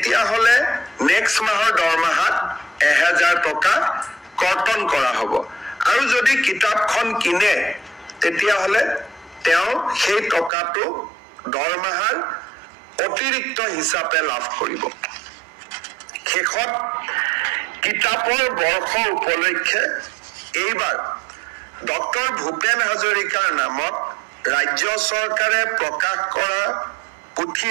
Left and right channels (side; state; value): left; drops out; at 10.5 s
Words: হলে নেক্সট মাহৰ দৰমহাত 1000 টকা কৰ্তন কৰা হ'ব আৰু যদি কিতাপখন কিনে তেতিয়া হলে তেও সেই টকাটো দৰমহাৰ অতিৰিক্ত হিচাপে লাভ কৰিব শেষত কিতাপৰ বৰ্ষ উপলক্ষে এইবাৰ ডক্টৰ ভূপেন হাজৰিকাৰ নামত ৰাজ্য চৰকাৰে প্ৰকাশ কৰা পুথি